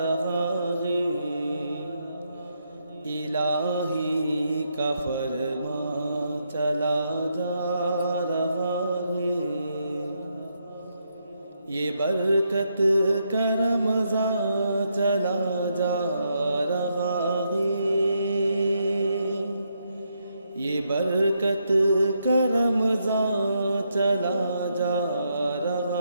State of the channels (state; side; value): inverted; both; correlation -0.79